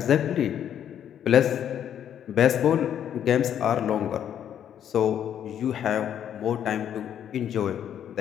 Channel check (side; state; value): right; quieter; 9.7 dB